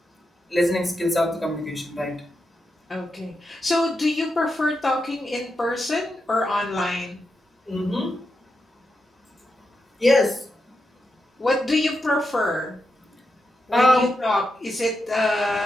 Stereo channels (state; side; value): normal; both; correlation 0.86